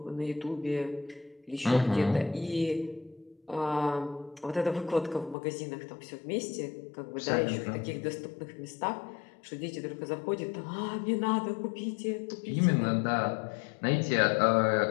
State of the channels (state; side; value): drops out; right; at 5.4 s